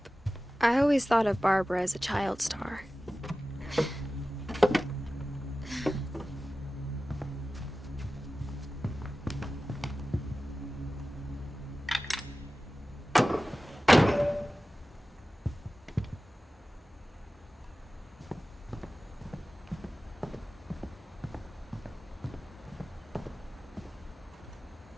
I always thought of Barbara as a child star.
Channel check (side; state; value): both; normal; correlation 0.96